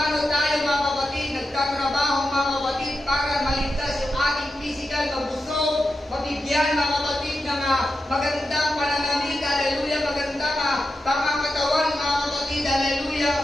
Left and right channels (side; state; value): both; normal; correlation 0.89